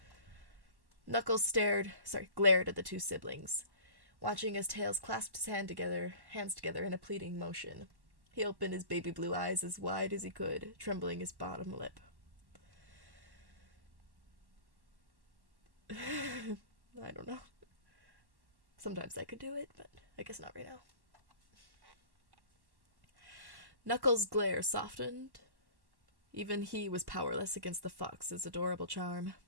Knuckles glared at the two siblings, watching as Tails clasped his hands together in a pleading motion. He opened his baby blue eyes as wide as he could, trembling his bottom lip. I don't know. Sometimes I could do it, but I guess not right now. Knuckles' glare softened. Even he was powerless against the fox's adorable charm.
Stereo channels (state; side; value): late; left; 1.1 ms